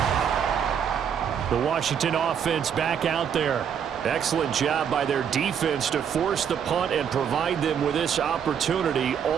The Washington offense back out there. Excellent job by their defense to force the punt and provide them with this opportunity,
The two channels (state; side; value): quieter; left; 8.0 dB